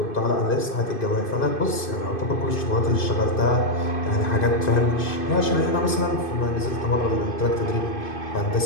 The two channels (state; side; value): late; right; 2.5 ms